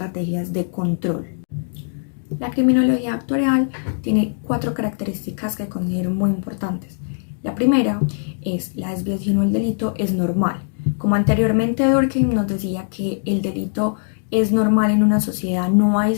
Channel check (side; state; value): right; silent; digital silence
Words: de control. La criminología actuarial tiene 4 características que considero muy importantes. La primera es la desviación o el delito es normal. Como anteriormente Durkheim nos decía que el delito es normal en una sociedad, no hay